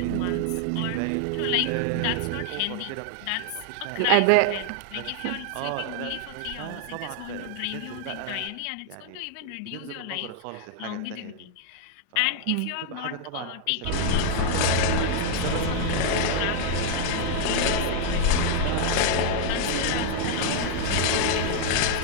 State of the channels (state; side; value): different; both; correlation 0.00